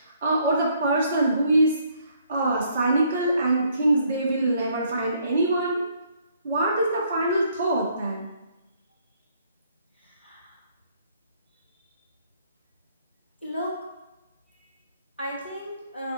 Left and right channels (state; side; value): inverted; both; correlation -0.67